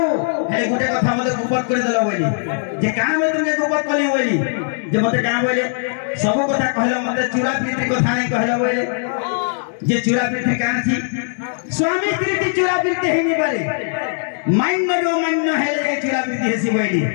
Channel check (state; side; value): silent; right; digital silence